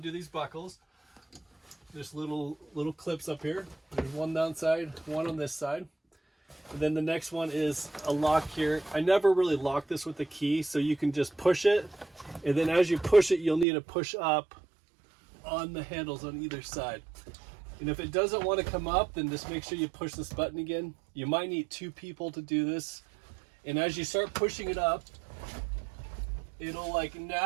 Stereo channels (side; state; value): left; drops out; at 13.7 s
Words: these buckles. There's little clips up here. There's one downside, one on this side. And then the next one is a lock here. I never really lock this with the key, so you can just push it. And then as you push it, you'll need to push up on the handles on either side. And if it doesn't want to come up, then just make sure you push this button again. You might need two people to do this. And as you start pushing it up, it'll like